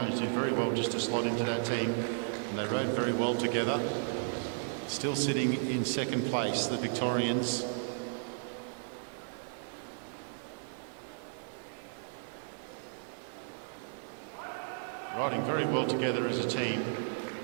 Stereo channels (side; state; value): left; silent; digital silence